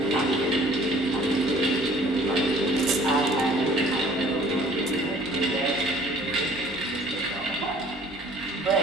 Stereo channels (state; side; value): normal; both; correlation 0.53